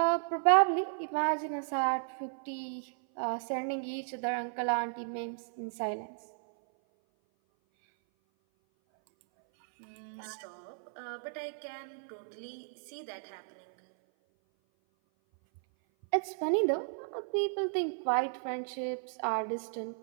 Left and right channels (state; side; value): silent; left; 55 dB below the other